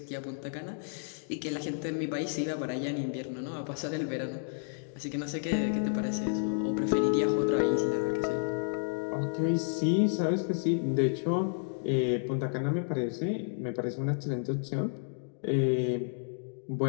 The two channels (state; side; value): silent; right; digital silence